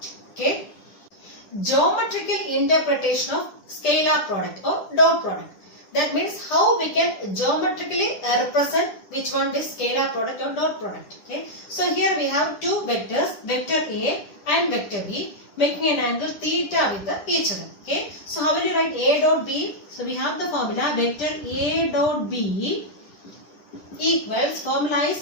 Okay. Geometrical interpretation of scalar product or dot product. That means how we can geometrically represent which one? This scalar product or dot product. Okay. So here we have two vectors, vector A and vector B, making an angle theta with each other. Okay. So how will you write A dot B? So we have the formula vector A dot B equals, formula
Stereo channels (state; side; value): late; right; 10 ms